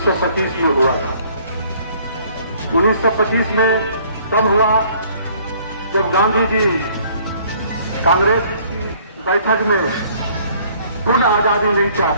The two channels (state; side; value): inverted; both; correlation -0.59